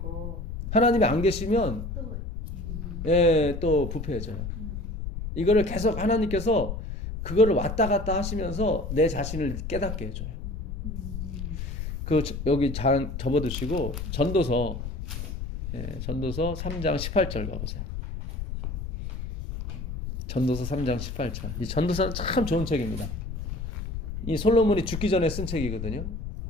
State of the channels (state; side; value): noise; left; rumble, 6 dB below the sound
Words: 하나님이 안 계시면 또 예, 또 부패해져요. 이거를 계속 하나님께서 그거를 왔다 갔다 하시면서 내 자신을 깨닫게 해줘요. 그 여기 접어두시고 전도서 3장 18절 가보세요. 전도서 3장 18절. 이 전도서는 참 좋은 책입니다. 이 솔로몬이 죽기 전에 쓴 책이거든요.